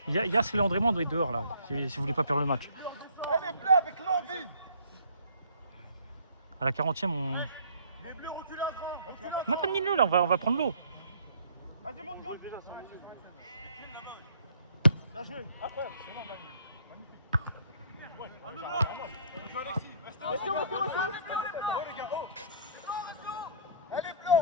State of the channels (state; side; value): inverted; both; correlation -0.56